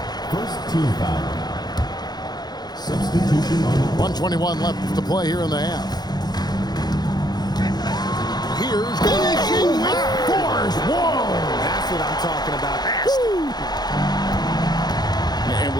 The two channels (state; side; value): late; right; 0.20 ms